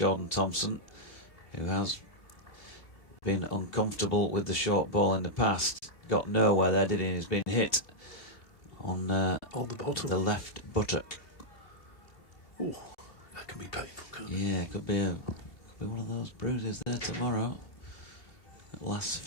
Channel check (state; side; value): late; right; 2.9 ms